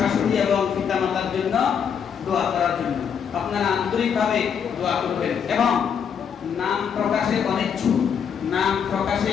এবং পিতামাতার জন্য দোয়া করার জন্য। আপনারা আন্তরিকভাবে দোয়া করবেন এবং নাম প্রকাশে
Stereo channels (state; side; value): quieter; right; 7.4 dB